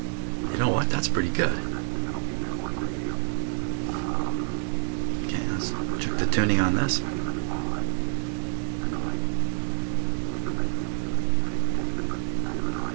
You know what? That's pretty good. Okay, let's check the tuning on this.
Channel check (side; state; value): left; silent; digital silence